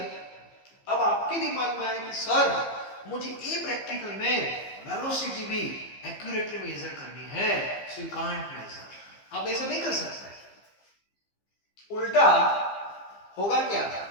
अब आपके दिमाग में आया कि सर मुझे ये प्रैक्टिकल में वेलोसिटी भी एक्यूरेटली मेजर करनी है, सो यू कांट मेजर. आप ऐसा नहीं कर सकते. उल्टा होगा क्या?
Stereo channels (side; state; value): right; late; 15 ms